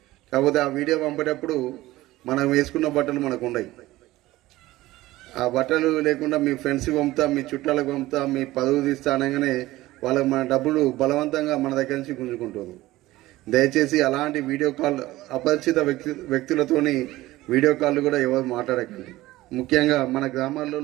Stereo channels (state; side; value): quieter; left; 17.4 dB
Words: కాకపోతే ఆ వీడియో పంపేటప్పుడు మనం వేసుకున్న బట్టలు మనకు ఉండవు. ఆ బట్టలు లేకుండా మీ ఫ్రెండ్స్కి పంపుతా, మీ చుట్టాలకు పంపుతా, మీ పదవి తీస్తా అనగానే వాళ్ళకి మన డబ్బులు బలవంతంగా మన దగ్గర నుంచి గుంజుకుంటుంది. దయచేసి అలాంటి వీడియో కాల్ అపరిచిత వ్యక్తులతోని వీడియో కాల్ కూడా ఎవరు మాట్లాడకండి. ముఖ్యంగా మన